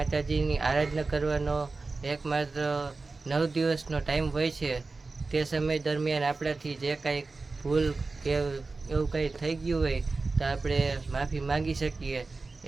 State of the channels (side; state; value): left; quieter; 3.8 dB